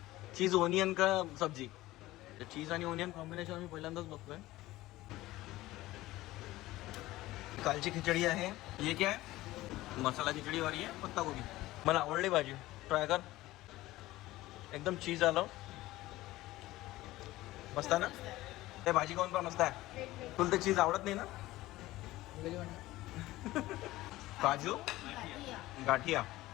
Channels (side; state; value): right; quieter; 17.3 dB